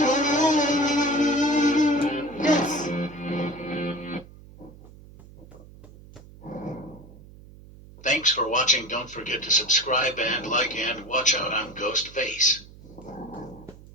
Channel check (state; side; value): noise; right; hum, 20 dB below the sound